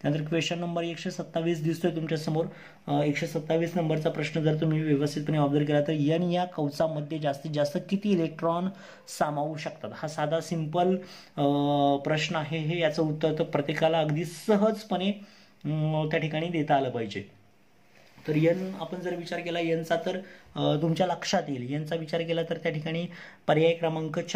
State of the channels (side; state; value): both; identical; correlation 1.00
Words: त्यानंतर क्वेश्चन नंबर 127 दिसतोय तुमच्या समोर. 127 नंबरचा प्रश्न जर तुम्ही व्यवस्थितपणे ऑब्झर्व केला तर एन या कवचामध्ये जास्तीत जास्त किती इलेक्ट्रॉन सामावू शकतात. हा साधा सिंपल प्रश्न आहे. हे याचं उत्तर तर प्रत्येकाला अगदी सहजपणे त्या ठिकाणी देता आलं पाहिजे. तर एन आपण जर विचार केला एनचा तर तुमच्या लक्षात येईल. एनचा विचार केला तर त्या ठिकाणी पर्याय क्रमांक